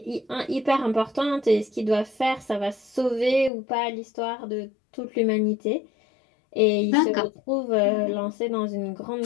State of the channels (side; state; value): right; drops out; at 3.5 s